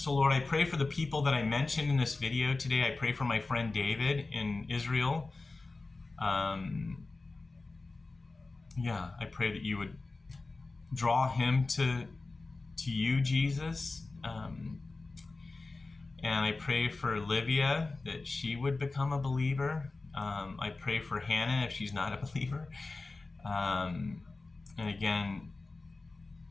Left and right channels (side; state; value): right; quieter; 3.5 dB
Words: Lord, I pray for the people that I mentioned in this video today. I pray for my friend David in Israel. I pray that you would draw him to you, Jesus. And I pray for Livia, that she would become a believer. I pray for Hannah if she's not a believer. And again,